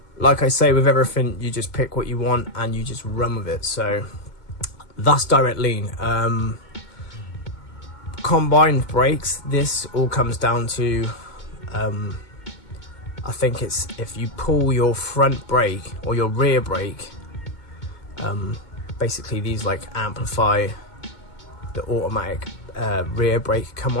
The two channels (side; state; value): right; late; 2.2 ms